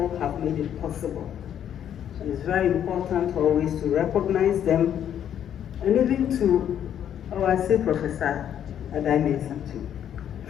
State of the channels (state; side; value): quieter; right; 9.8 dB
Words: have made it possible. And it's very important always to recognize them and even to, I say Professor Adai too,